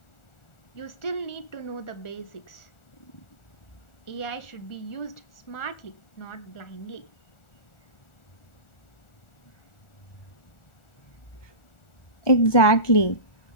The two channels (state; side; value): late; right; 1.4 ms